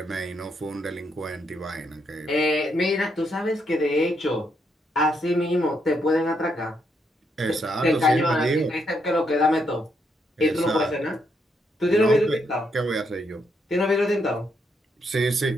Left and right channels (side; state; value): both; normal; correlation 0.77